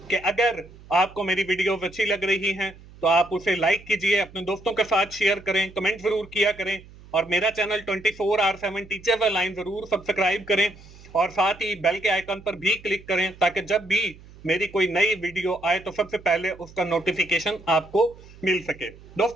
कि अगर आपको मेरी वीडियोस अच्छी लग रही हैं तो आप उसे लाइक कीजिए, अपने दोस्तों के साथ शेयर करें, कमेंट जरूर किया करें और मेरा चैनल 24R7 टीचर लाइन जरूर सब्सक्राइब करें और साथ ही बेल के आइकन पर भी क्लिक करें ताकि जब भी मेरी कोई नई वीडियो आए तो सबसे पहले उसका नोटिफिकेशन आपको मिल सके।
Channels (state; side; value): noise; right; hum, 21 dB below the sound